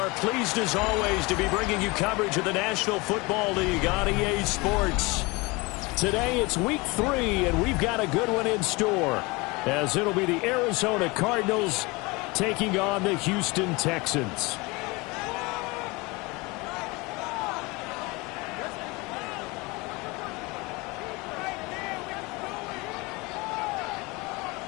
pleased as always to be bringing you coverage of the National Football League on EA Sports. Today it's week 3 and we've got a good one in store as it'll be the Arizona Cardinals taking on the Houston Texans.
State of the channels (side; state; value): right; quieter; 25.1 dB